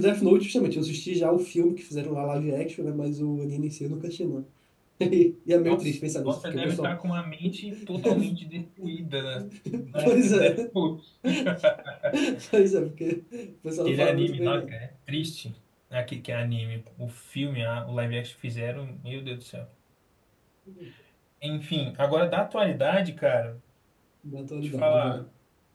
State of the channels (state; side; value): identical; both; correlation 1.00